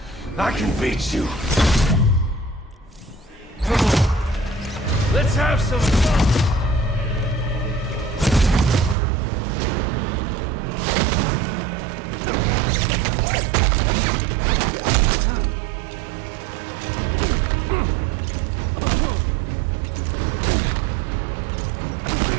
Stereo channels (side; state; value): left; drops out; at 9.0 s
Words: I can beat you. Come on. Let's have some fun.